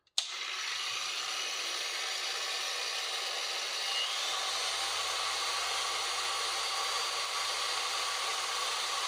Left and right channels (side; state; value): both; identical; correlation 1.00